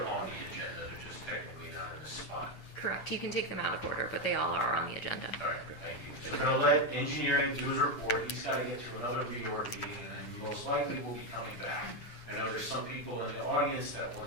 on the agenda, they're just technically not in a spot. Correct. You can take them out of order, but they all are on the agenda. All right, thank you. So we're gonna let engineering do his report, he's gotta get to another reorg meeting, and most likely will be coming back. I know there's some people in the audience that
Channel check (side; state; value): right; late; 8.4 ms